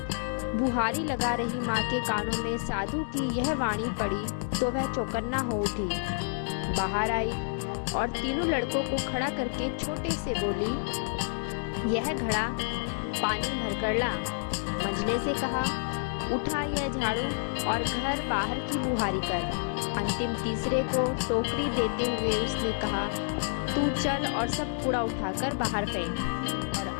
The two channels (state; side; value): silent; right; digital silence